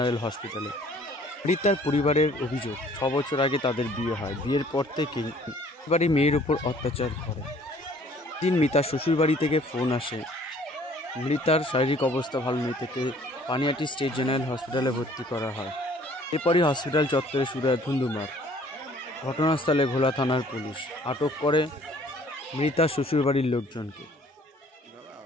হসপিটালে। মৃতার পরিবারের অভিযোগ, 6 বছর আগে তাদের বিয়ে হয়। বিয়ের পর থেকেই পরিবারে মেয়ের উপর অত্যাচার করে। দিন মৃতার শ্বশুরবাড়ি থেকে ফোন আসে, মৃতার শারীরিক অবস্থা ভালো নেই, থেকে পানিহাটি স্টেট জেনারেল হসপিটালে ভর্তি করা হয়। এরপরই হসপিটাল চত্বরে শুরু হয় ধুন্ধুমার। ঘটনাস্থলে ঘোলা থানার পুলিশ আটক করে মৃতার শ্বশুরবাড়ির লোকজনকে।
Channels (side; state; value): both; normal; correlation 0.56